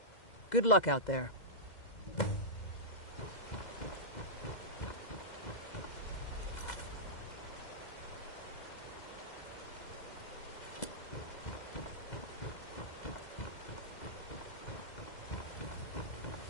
Good luck out there.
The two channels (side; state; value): right; late; 2.0 ms